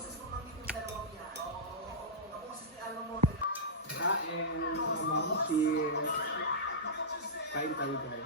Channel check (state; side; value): normal; both; correlation -0.14